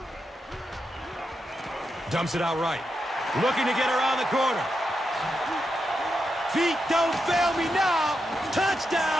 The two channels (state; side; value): normal; both; correlation 0.86